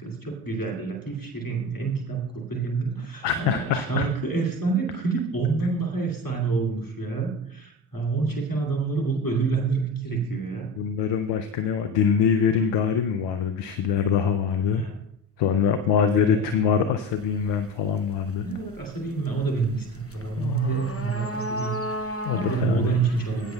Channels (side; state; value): both; normal; correlation 0.28